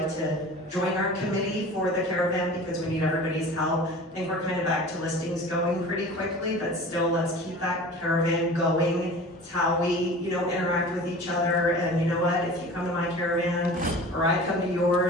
to join our committee for the caravan, because we need everybody's help. I think we're kind of back to listings going pretty quickly, but still, let's keep that caravan going. It's how we, interact with each other. And you know what? If you come to my caravan or I come to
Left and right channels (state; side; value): normal; both; correlation 0.39